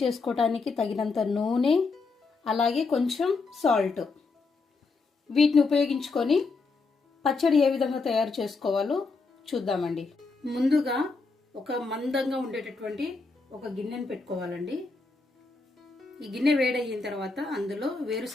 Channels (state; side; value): quieter; right; 4.1 dB